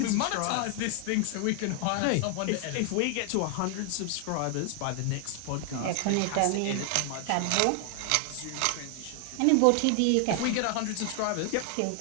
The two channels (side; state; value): both; different; correlation 0.00